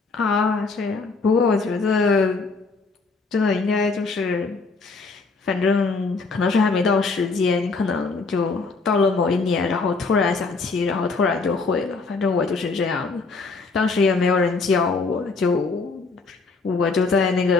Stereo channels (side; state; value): right; quieter; 4.1 dB